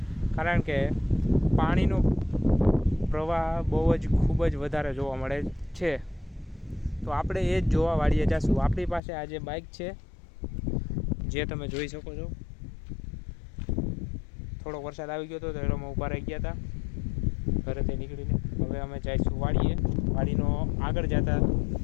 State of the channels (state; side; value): drops out; right; at 9.0 s